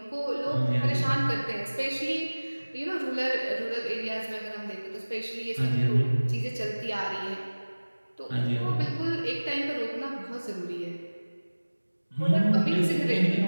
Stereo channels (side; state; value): both; inverted; correlation -1.00